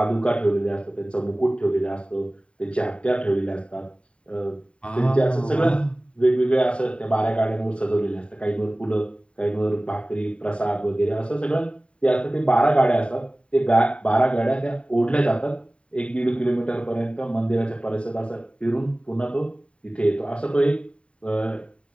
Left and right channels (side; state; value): right; late; 0.059 ms